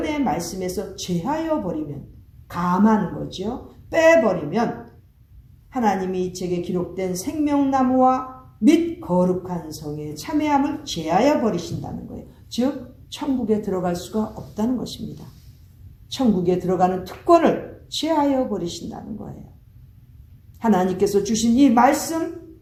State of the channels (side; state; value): both; identical; correlation 1.00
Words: 말씀에서 제하여 버리면, 감하는 거죠. 빼버리면 하나님이 이 책에 기록된 생명나무와 및 거룩한 성의 참회함을 제하여 버리신다는 거예요. 즉 천국에 들어갈 수가 없다는 것입니다. 천국에 들어가는 특권을 제하여 버리신다는 거예요. 하나님께서 주신 이 말씀,